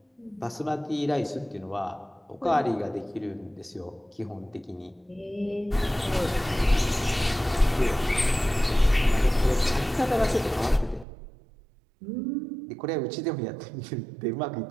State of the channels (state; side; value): drops out; left; at 11.1 s